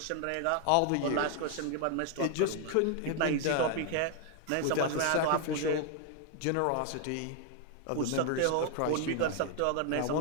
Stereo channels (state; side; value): different; both; correlation 0.00